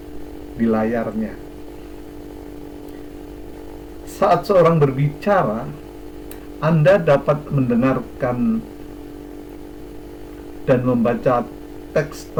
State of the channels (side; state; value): both; identical; correlation 1.00